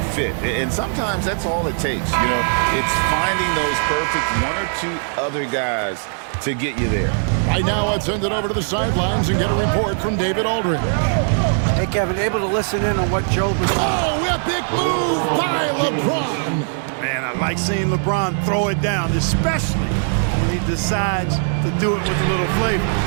fit. And sometimes that's all it takes. You know, it's finding those perfect one or two other guys to get you there. Right now, let's send it over to the sidelines and get a report from David Aldridge. Hey, Kevin, able to listen in on what Joe was... Oh, epic move by LeBron. Man, I like seeing LeBron throw it down, especially when he decides to do it with a little flavor.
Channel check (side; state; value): left; silent; digital silence